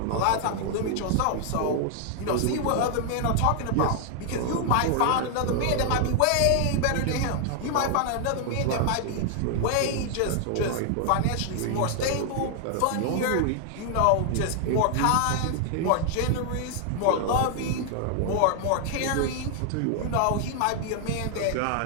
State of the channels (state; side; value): different; both; correlation 0.00